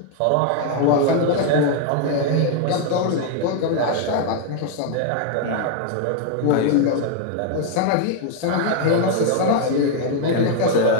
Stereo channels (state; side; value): different; both; correlation 0.00